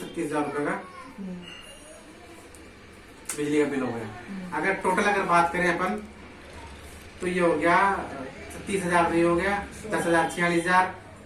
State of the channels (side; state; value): both; identical; correlation 1.00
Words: रुपए का बिजली का बिल हो गया। अगर टोटल अगर बात करें अपन, तो ये हो गया 36,000, ये हो गया 10,000, 46,000,